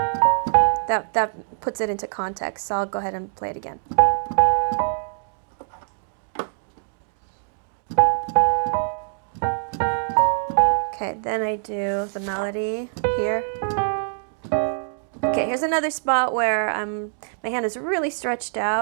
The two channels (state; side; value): silent; left; digital silence